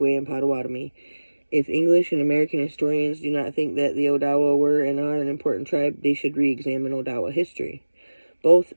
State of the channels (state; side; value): inverted; both; correlation -1.00